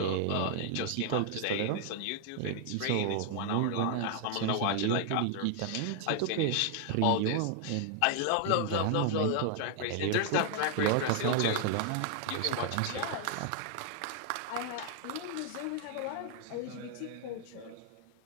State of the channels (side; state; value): both; different; correlation 0.00